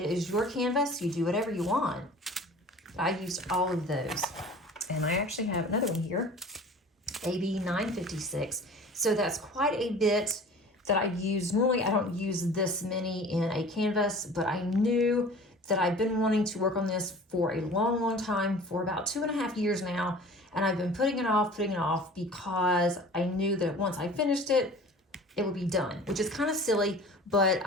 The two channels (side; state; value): both; normal; correlation 0.43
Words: is your canvas. You do whatever you want. I used all of those. And I actually have another one here, AB 956. So that's quite a bit that I use. Normally I don't use this many in a canvas, but I knew that I've been wanting to work on this for a long, long time, for about 2.5 years now. And I've been putting it off because I knew that once I finished it, it would be done, which is kind of silly, but